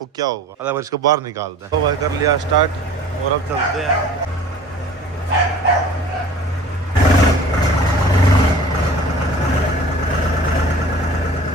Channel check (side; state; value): both; normal; correlation 0.45